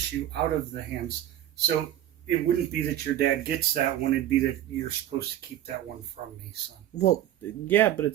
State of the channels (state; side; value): quieter; left; 12.1 dB